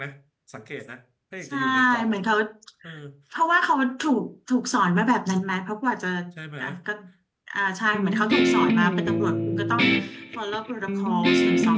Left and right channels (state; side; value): identical; both; correlation 1.00